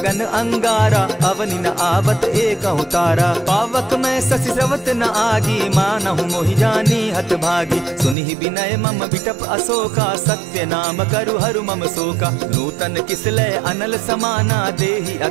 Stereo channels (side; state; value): left; drops out; at 8.2 s